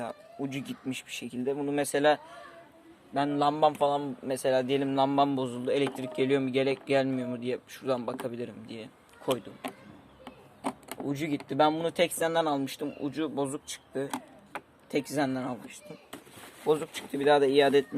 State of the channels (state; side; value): identical; both; correlation 1.00